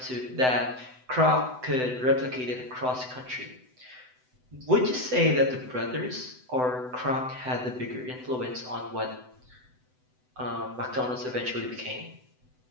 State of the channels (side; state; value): left; late; 7.9 ms